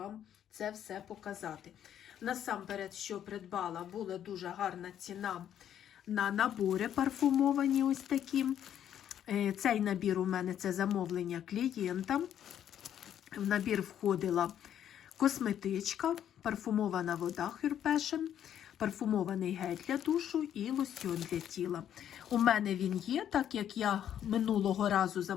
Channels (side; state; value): right; quieter; 10.1 dB